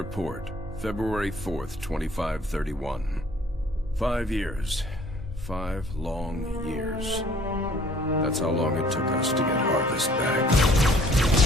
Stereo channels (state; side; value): normal; both; correlation 0.57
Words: February 4th, 2531. 5 years. 5 long years. That's how long it took us to get Harvest back.